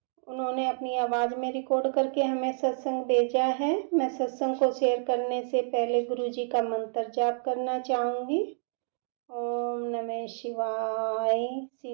उन्होंने अपनी आवाज में रिकॉर्ड करके हमें सत्संग भेजा है। मैं सत्संग को शेयर करने से पहले गुरु जी का मंत्र जाप करना चाहूंगी। ओम नमः शिवाय,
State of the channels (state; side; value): silent; left; digital silence